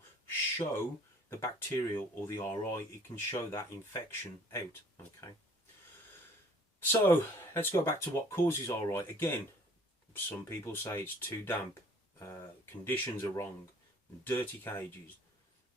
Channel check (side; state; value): both; normal; correlation 0.55